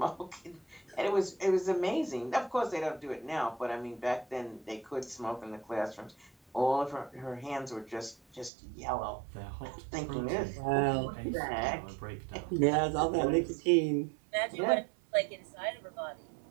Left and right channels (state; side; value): drops out; left; at 8.5 s